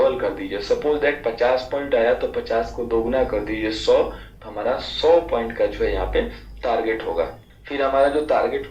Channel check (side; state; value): both; identical; correlation 1.00